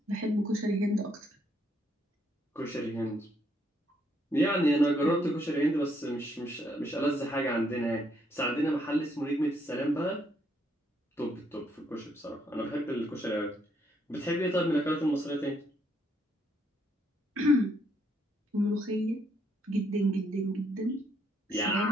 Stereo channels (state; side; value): normal; both; correlation 0.72